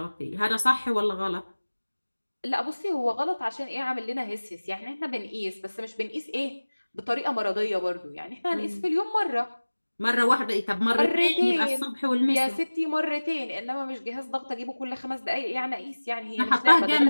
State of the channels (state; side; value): inverted; both; correlation -1.00